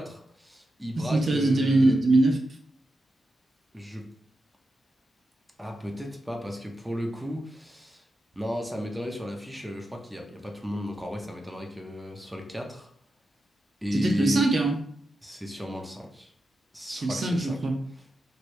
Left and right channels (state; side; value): normal; both; correlation 0.89